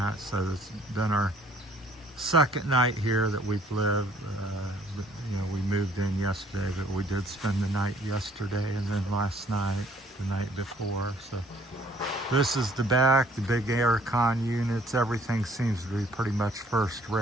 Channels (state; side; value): normal; both; correlation 0.59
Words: So it's been our second night here that we've lived. We moved in yesterday, but we did spend the night yesterday and then last night, the night before. So this is the back, the big aircon units. Everything seems to be pretty much first